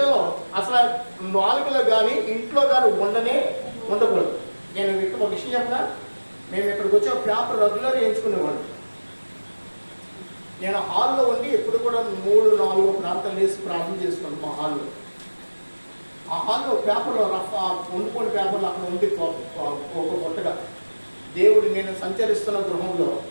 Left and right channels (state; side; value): inverted; both; correlation -1.00